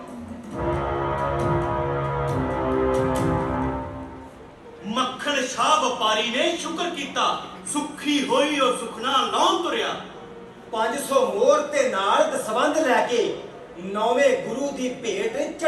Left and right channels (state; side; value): identical; both; correlation 1.00